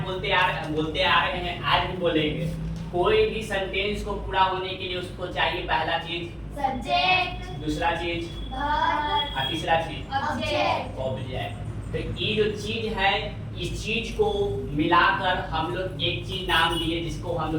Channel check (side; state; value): both; identical; correlation 1.00